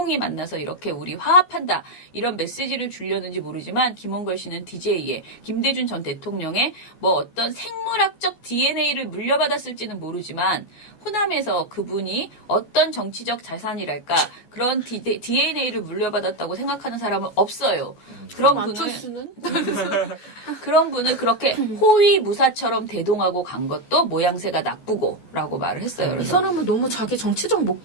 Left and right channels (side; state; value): right; late; 14 ms